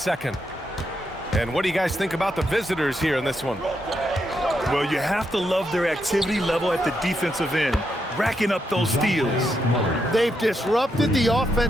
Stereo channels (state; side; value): normal; both; correlation 0.81